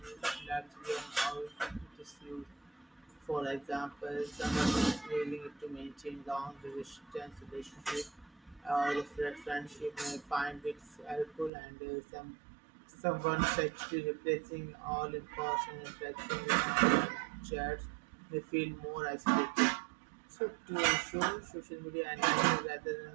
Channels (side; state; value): left; drops out; at 11.5 s